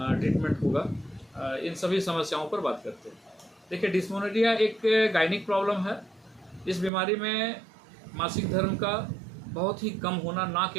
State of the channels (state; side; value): drops out; left; at 6.9 s